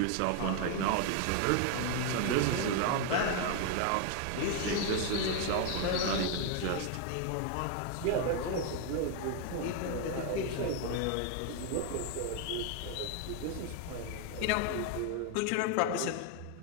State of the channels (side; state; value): both; different; correlation 0.01